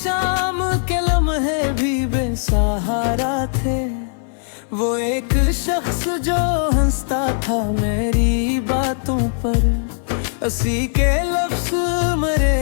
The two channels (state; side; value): silent; right; 60 dB below the other